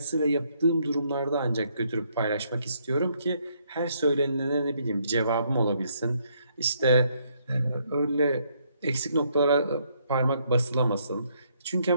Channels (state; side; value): inverted; both; correlation -0.71